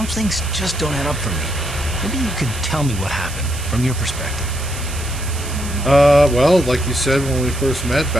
things just don't add up for me. Maybe you could tell me what happened, from your perspective. Well, like you said when we first met,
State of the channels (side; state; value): right; noise; hiss, 12 dB below the sound